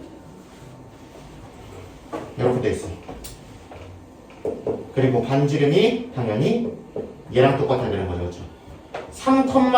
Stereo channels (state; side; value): identical; both; correlation 1.00